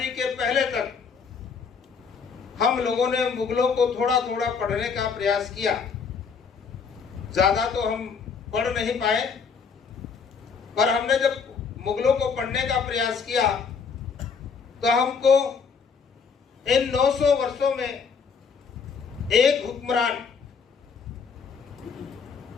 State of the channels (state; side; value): quieter; right; 5.7 dB